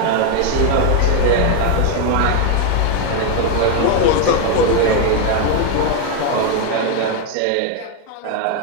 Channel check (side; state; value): both; different; correlation 0.01